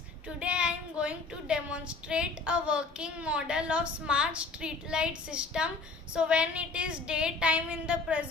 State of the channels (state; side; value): quieter; right; 4.0 dB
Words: today I am going to demonstrate a working model of smart street light system. So when it is daytime in the